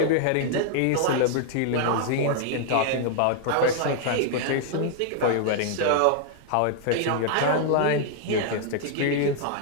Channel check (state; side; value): different; both; correlation 0.00